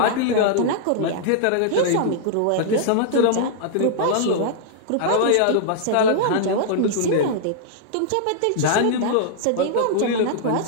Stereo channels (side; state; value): both; different; correlation -0.01